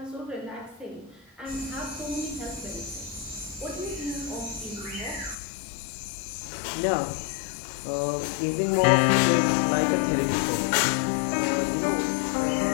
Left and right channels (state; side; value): drops out; right; at 5.4 s